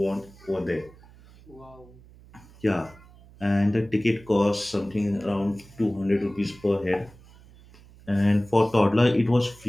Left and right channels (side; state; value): right; noise; hum, 24 dB below the sound